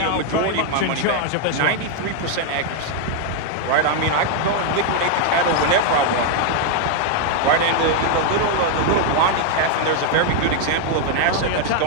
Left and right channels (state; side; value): different; both; correlation 0.00